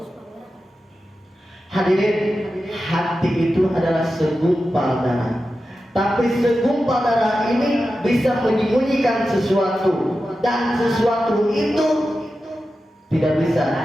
Hadirin, hati itu adalah segumpal darah. Tapi segumpal darah ini bisa menyembunyikan sesuatu, dan sesuatu itu tidak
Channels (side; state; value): both; normal; correlation 0.92